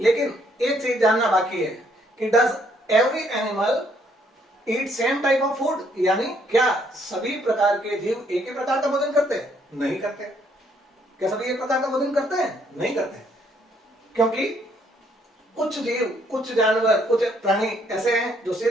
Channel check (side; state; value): both; normal; correlation 0.68